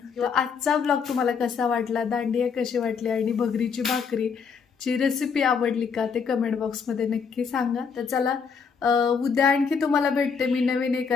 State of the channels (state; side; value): quieter; right; 6.0 dB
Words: आजचा ब्लॉग तुम्हाला कसा वाटला, दांडिया कशी वाटली आणि भगरीची भाकरीची रेसिपी आवडली का ते कमेंट बॉक्समध्ये नक्की सांगा. तर चला, उद्या आणखी तुम्हाला भेटते मी नवीन